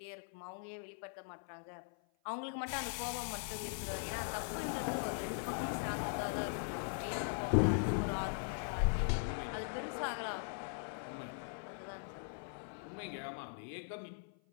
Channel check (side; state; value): right; silent; 51 dB below the other